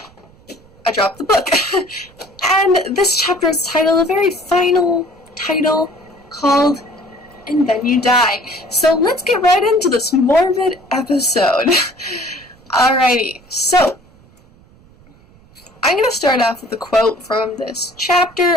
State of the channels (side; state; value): right; noise; rumble, 28 dB below the sound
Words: I dropped the book. And this chapter is titled, a very final title called And Then You Die. So let's get right into this morbid episode. Alrighty, so I'm going to start off with a quote from this chapter.